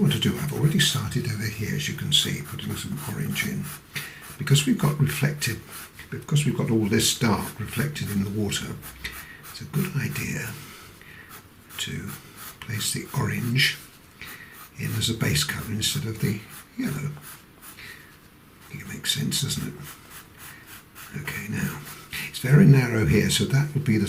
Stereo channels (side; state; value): both; identical; correlation 1.00